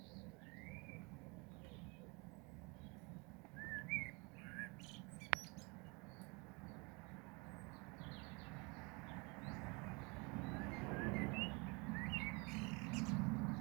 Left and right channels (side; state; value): left; quieter; 29.0 dB